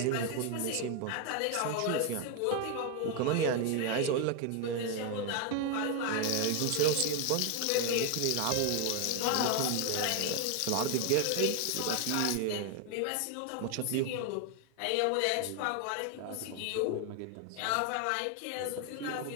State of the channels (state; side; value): different; both; correlation 0.01